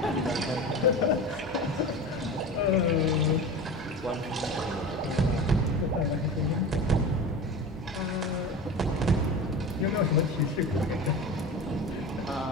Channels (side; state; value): both; normal; correlation 0.31